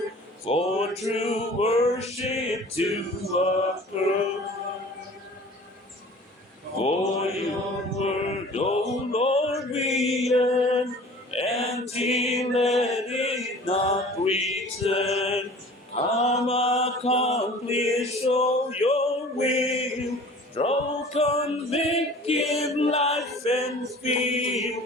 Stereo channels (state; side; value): normal; both; correlation 0.45